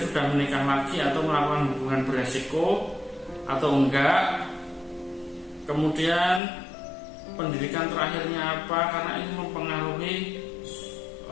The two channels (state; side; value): drops out; right; at 6.4 s